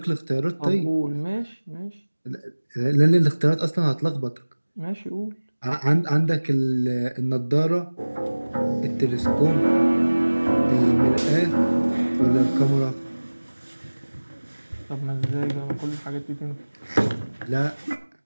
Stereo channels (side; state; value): both; inverted; correlation -1.00